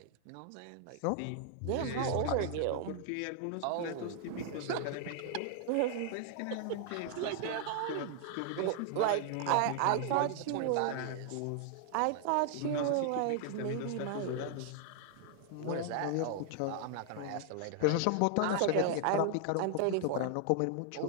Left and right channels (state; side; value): different; both; correlation 0.00